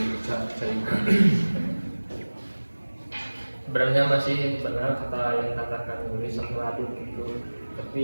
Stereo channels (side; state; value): both; inverted; correlation -1.00